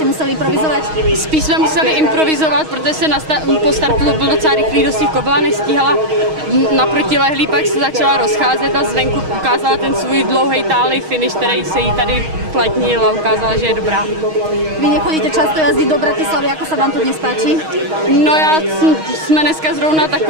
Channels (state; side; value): late; left; 6.4 ms